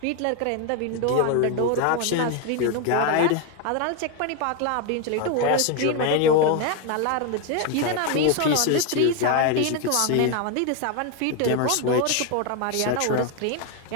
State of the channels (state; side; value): different; both; correlation 0.01